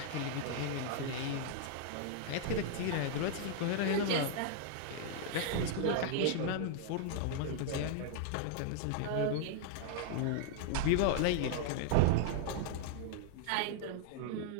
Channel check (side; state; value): both; different; correlation -0.01